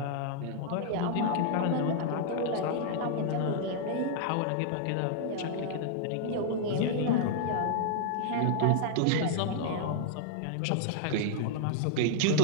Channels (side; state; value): both; different; correlation 0.00